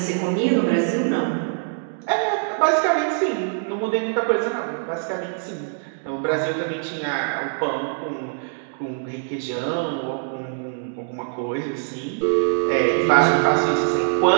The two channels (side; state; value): left; silent; digital silence